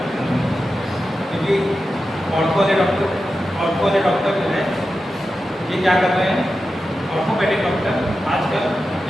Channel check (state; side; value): normal; both; correlation 0.91